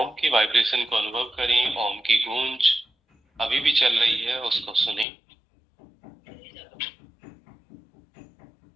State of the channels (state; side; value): drops out; right; at 5.1 s